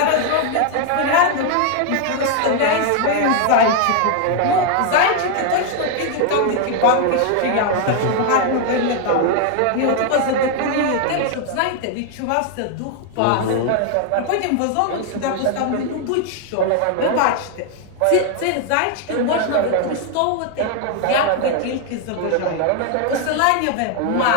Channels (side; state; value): both; different; correlation 0.00